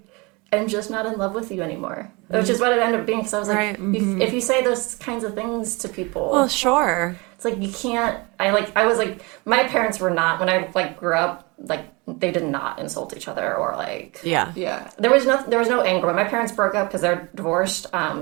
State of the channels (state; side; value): quieter; left; 26.8 dB